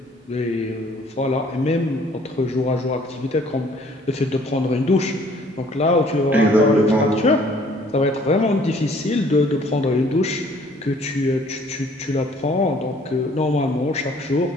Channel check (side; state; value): both; normal; correlation 0.58